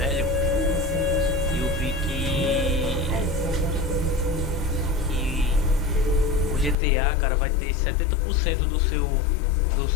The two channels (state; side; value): drops out; right; at 6.8 s